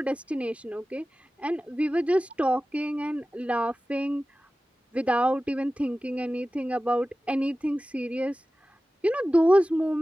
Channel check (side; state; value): both; normal; correlation 0.96